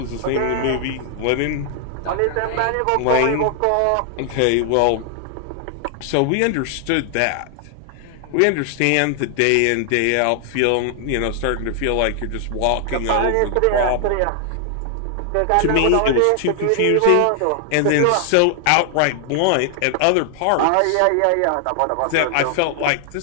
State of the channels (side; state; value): both; different; correlation 0.00